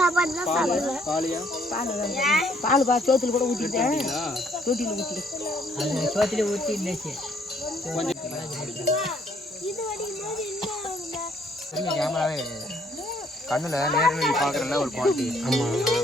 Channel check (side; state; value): both; normal; correlation 0.65